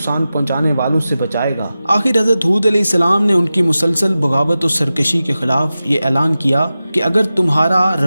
پہنچانے والوں سے بچائے گا۔ آخر حضرت ہود علیہ السلام نے ان کی مسلسل بغاوت و سرکشی کے خلاف یہ اعلان کیا کہ اگر تمہارا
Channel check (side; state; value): both; inverted; correlation -0.94